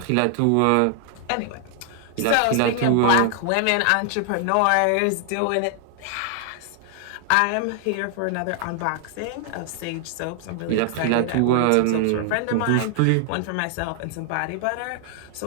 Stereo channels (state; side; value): different; both; correlation 0.00